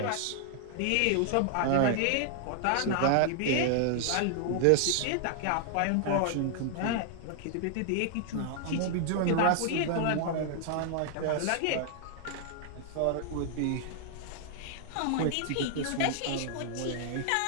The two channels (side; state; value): both; different; correlation 0.00